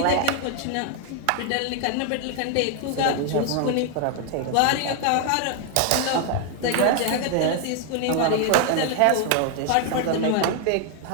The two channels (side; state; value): both; different; correlation 0.00